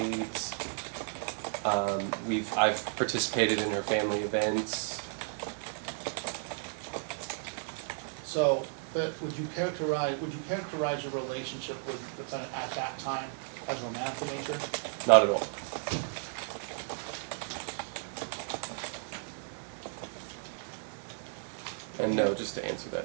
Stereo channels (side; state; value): left; silent; digital silence